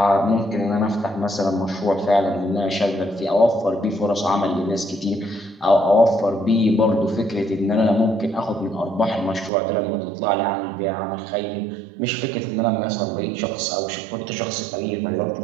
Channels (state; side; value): drops out; left; at 9.5 s